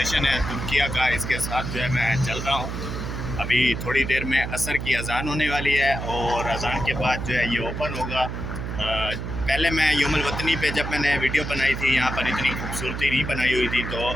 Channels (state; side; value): noise; right; hum, 5 dB below the sound